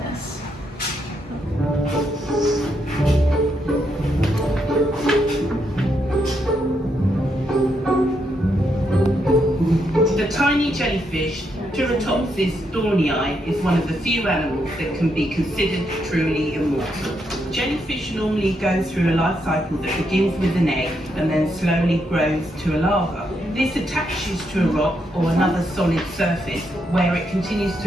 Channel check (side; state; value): both; normal; correlation 0.79